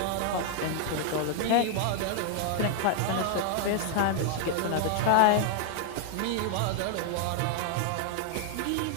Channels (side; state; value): both; different; correlation 0.00